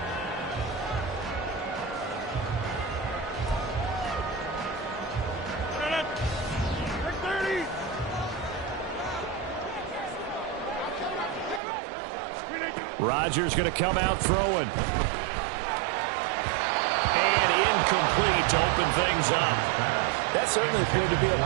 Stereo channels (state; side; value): drops out; left; at 11.6 s